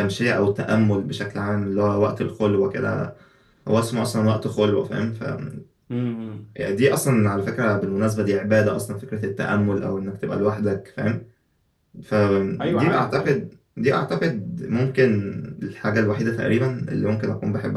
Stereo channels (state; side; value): identical; both; correlation 1.00